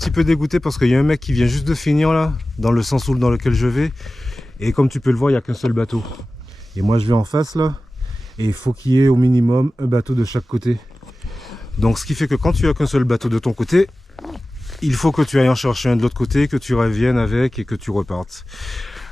peu dégoûté parce qu'il y a un mec qui vient juste de finir là, dans le sens dans lequel je vais. Et comme tu peux le voir, il n'y a qu'un seul bateau. Et moi je vais en face là. Et il faut qu'il y ait au minimum un bateau de chaque côté. Donc ce qui fait que quand tu as qu'un seul bateau de ton côté, il faut que tu ailles en chercher un de l'autre côté, que tu reviennes avec et que tu repartes.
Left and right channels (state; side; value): normal; both; correlation 0.96